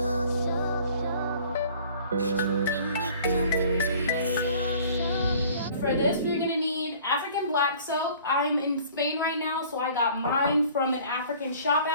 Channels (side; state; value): both; inverted; correlation -0.50